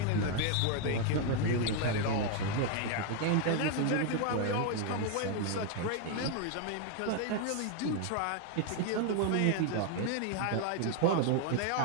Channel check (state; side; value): different; both; correlation 0.00